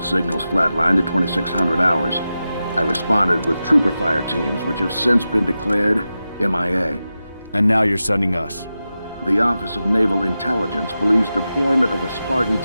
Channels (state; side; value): inverted; both; correlation -0.92